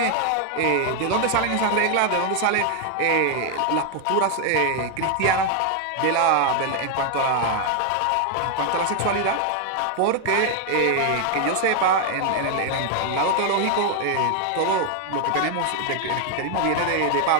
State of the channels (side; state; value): both; different; correlation 0.00